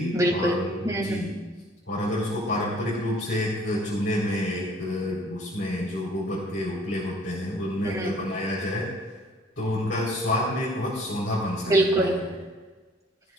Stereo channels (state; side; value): normal; both; correlation 0.56